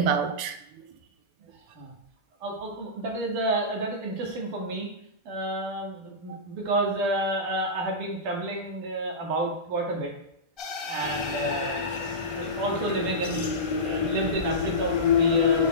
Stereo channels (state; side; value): late; left; 1.5 ms